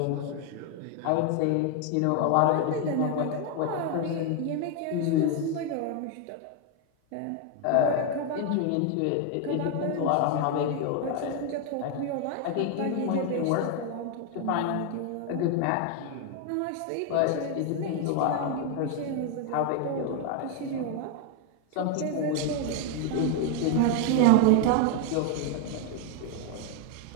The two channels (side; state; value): both; different; correlation 0.01